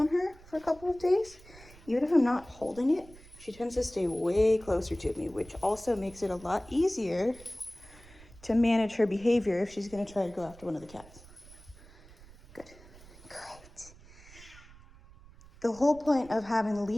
her for a couple of days, even if I'm not holding it, she tends to stay way closer to me, which also makes it a lot easier to manage her behavior if she's gonna try to go after one of the cats. Good. Great. The whole point of having the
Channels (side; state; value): right; noise; rumble, 21 dB below the sound